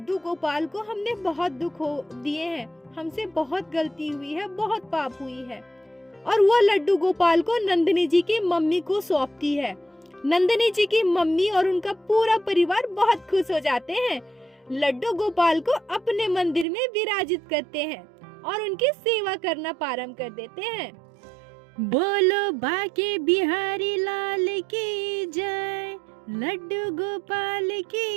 गोपाल को हमने बहुत दुख हो दिए हैं, हमसे बहुत गलती हुई है, बहुत पाप हुई है। और वो लड्डू गोपाल को नंदिनी जी की मम्मी को सौंपती है। नंदिनी जी की मम्मी और उनका पूरा परिवार बहुत खुश हो जाते हैं। लड्डू गोपाल को अपने मंदिर में विराजित करते हैं और उनकी सेवा करना प्रारंभ कर देते हैं। बोलो बाके बिहारी लाल की जय, लड्डू गोपाल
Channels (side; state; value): left; drops out; at 16.7 s